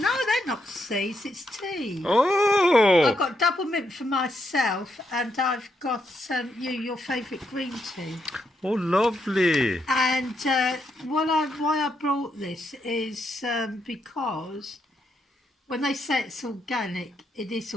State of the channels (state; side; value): normal; both; correlation 0.79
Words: they're not seeds. It's tea. Oh! I've got double mint for myself, and I've got your favourite green tea. Oh, lovely. And why I brought this is because when they say it's organic, it is